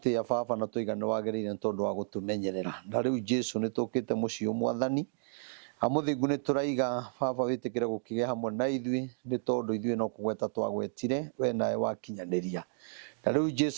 baba na tuigana wagirire tondu wa gutumenyerera na riu Jesu ni tukite mucio mwathani amuthingu ni turaiga baba witikire gukige hamwe na ithui ni tondu ithui no kugweta twagwetire we nae wakinyaniria na riu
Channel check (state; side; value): silent; left; digital silence